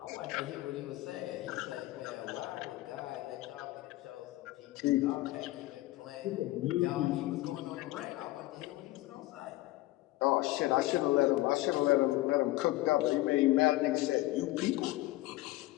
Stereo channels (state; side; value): quieter; right; 17.8 dB